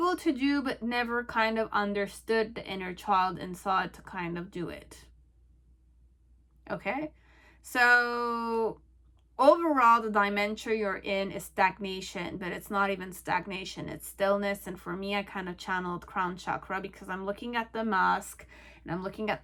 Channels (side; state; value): both; identical; correlation 1.00